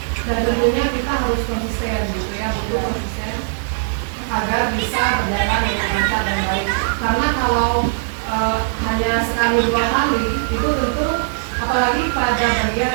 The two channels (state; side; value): silent; left; digital silence